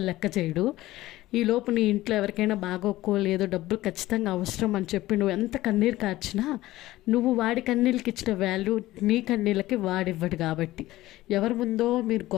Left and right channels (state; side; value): quieter; right; 16.7 dB